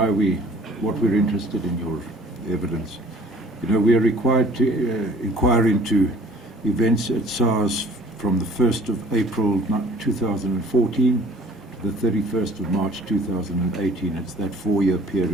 we're interested in your evidence. You know, we are required to inquire into events at SARS from the 1st of April 2014 to the 31st of March 2018. It's that 4-year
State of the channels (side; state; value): both; normal; correlation 0.51